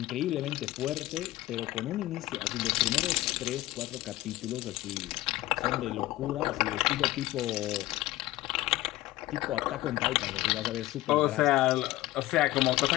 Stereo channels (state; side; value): quieter; right; 17.0 dB